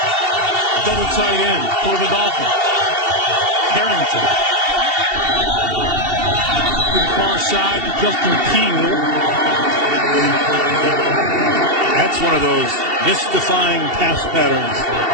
double tight end for the Dolphins. Harrington. To the far side to Justin Keel. That's one of those mystifying pass patterns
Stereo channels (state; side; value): late; left; 2.7 ms